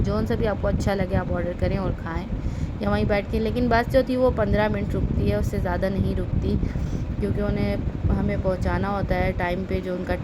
सा भी आपको अच्छा लगे आप ऑर्डर करें और खाएं या वहीं बैठ के। लेकिन बस जो थी वो 15 मिनट रुकती है, उससे ज़्यादा नहीं रुकती, क्योंकि उन्हें हमें पहुंचाना होता है टाइम पे, जो उनका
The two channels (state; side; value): identical; both; correlation 1.00